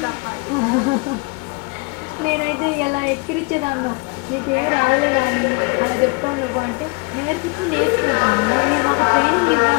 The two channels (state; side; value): quieter; right; 29.1 dB